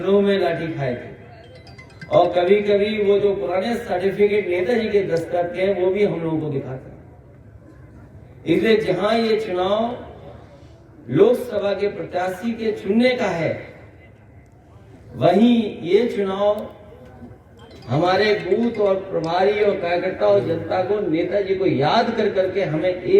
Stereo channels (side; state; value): both; identical; correlation 1.00